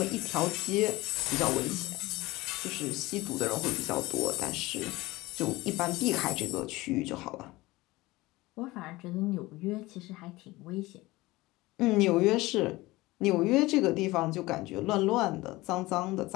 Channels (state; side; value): quieter; right; 20.0 dB